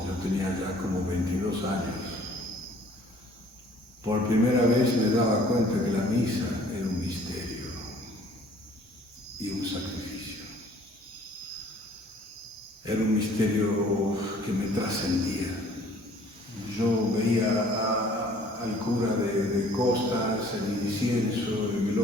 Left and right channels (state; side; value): normal; both; correlation 0.55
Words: yo tenía ya como 22 años, por primera vez me daba cuenta que la misa era un misterio y un sacrificio. Era un misterio que me trascendía. Yo veía al cura de costas, el incienso, el